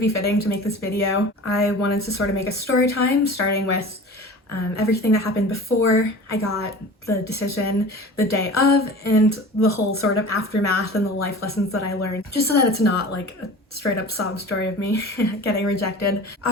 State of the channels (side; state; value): both; normal; correlation 0.38